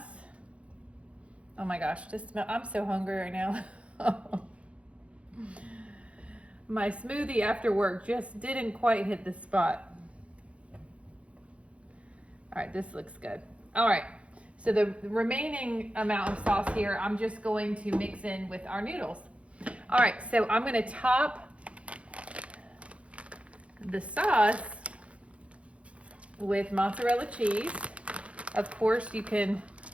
Oh my gosh, I'm so hungry right now. My smoothie after work just didn't quite hit the spot. All right, this looks good. All right, so the remaining amount of sauce here, I'm just going to mix in with our noodles. All right, so I'm gonna top the sauce with mozzarella cheese. Of course, you can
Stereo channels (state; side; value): late; left; 0.062 ms